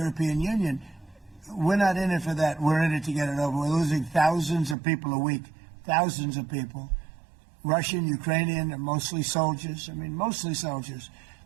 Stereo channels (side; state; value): left; drops out; at 4.8 s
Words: Union. We're not in it for that. We're in it to get it over. We're losing thousands of people a week. Thousands of people, Russian, Ukrainian, and mostly soldiers. I mean, mostly soldiers.